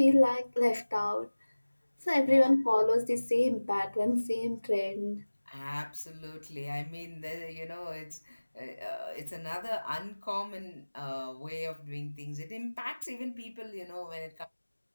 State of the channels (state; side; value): inverted; both; correlation -1.00